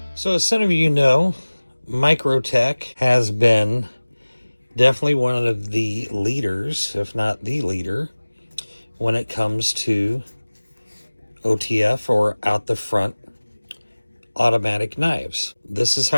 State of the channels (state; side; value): inverted; both; correlation -1.00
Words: So as some of you know, MICROTECH has been definitely one of the leaders, if not the leader, when it comes to OTF, or out the front automatic knives. This is